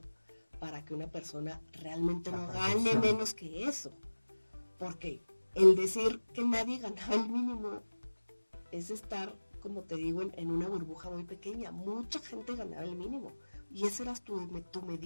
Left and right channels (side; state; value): both; inverted; correlation -1.00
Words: para que una persona realmente no gane menos que eso, porque el decir que nadie ganaba el mínimo es estar, como te digo, en una burbuja muy pequeña. Mucha gente ganaba el mínimo y esa era tu